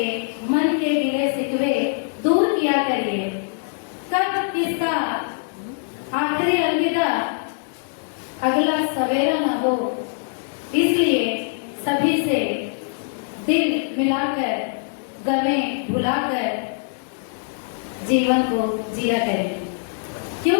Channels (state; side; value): silent; right; digital silence